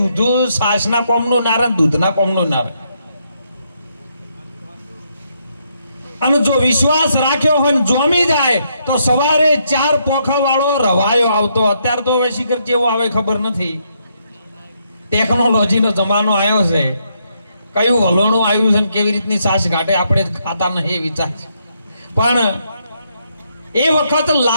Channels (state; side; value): inverted; both; correlation -0.76